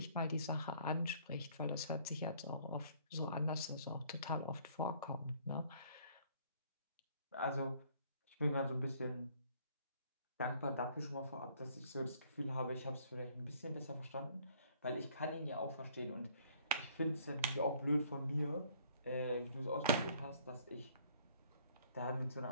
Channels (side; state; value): both; inverted; correlation -0.60